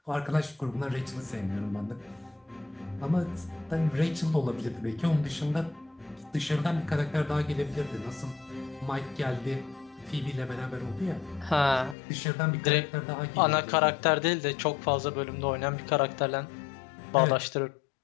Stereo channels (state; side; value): drops out; right; at 12.0 s